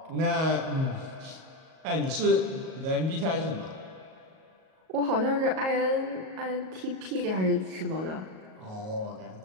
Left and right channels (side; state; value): left; late; 38 ms